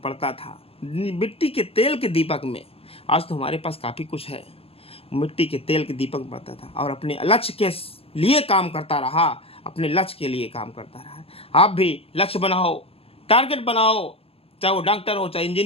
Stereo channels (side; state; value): right; late; 0.28 ms